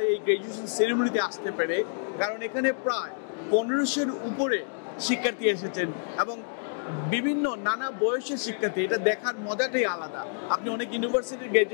এই গ্র্যাজুয়েশন সেরিমনিতে আসতে পেরে, কারণ এখানে প্রায় 1500-এর উপরে শিক্ষার্থী এসেছেন এবং বিভিন্ন নানা বয়সের শিক্ষার্থী। এটা দেখার মজাটাই আলাদা। আপনি অনেক ইউনিভার্সিটির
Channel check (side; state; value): right; silent; digital silence